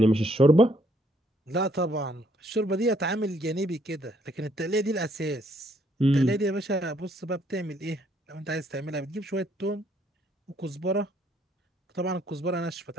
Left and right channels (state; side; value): normal; both; correlation 0.68